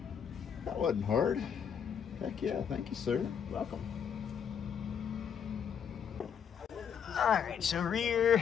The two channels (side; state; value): right; quieter; 7.6 dB